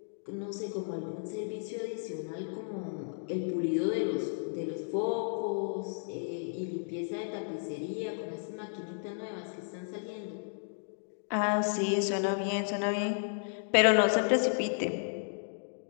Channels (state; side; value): silent; right; digital silence